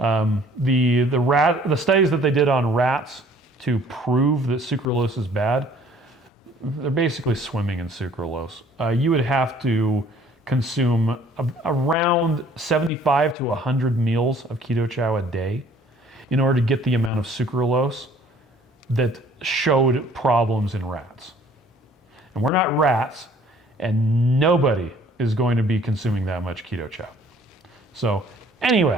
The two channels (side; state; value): both; normal; correlation 0.56